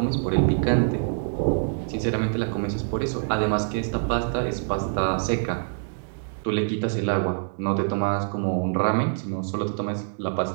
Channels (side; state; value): left; silent; digital silence